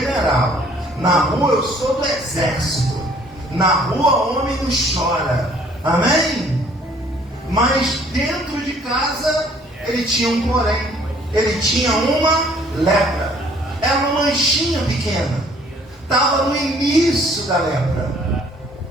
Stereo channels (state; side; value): normal; both; correlation 0.59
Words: Na rua eu sou do exército. Na rua homem não chora. Amém? Mas dentro de casa ele tinha um porém. Ele tinha uma lepra. Era uma manchinha pequena. Estava no início da lepra.